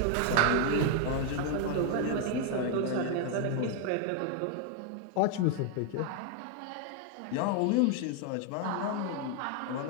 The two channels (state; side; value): different; both; correlation 0.00